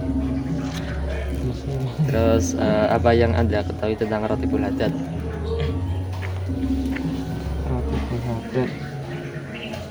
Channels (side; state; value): both; identical; correlation 1.00